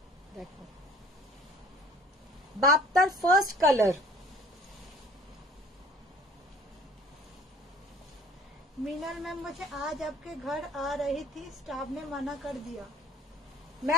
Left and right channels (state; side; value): normal; both; correlation 0.50